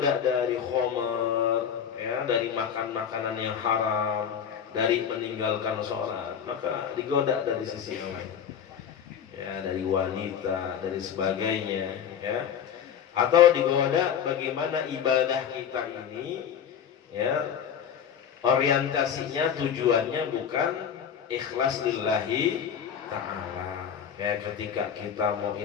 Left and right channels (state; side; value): quieter; right; 8.2 dB